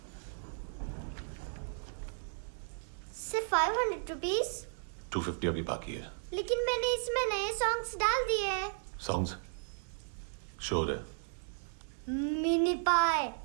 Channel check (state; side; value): silent; left; 54 dB below the other